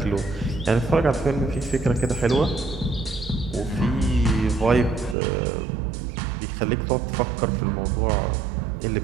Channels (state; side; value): drops out; left; at 5.2 s